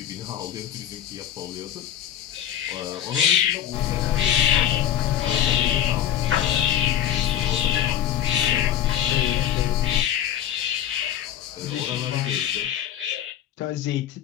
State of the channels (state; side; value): quieter; right; 10.7 dB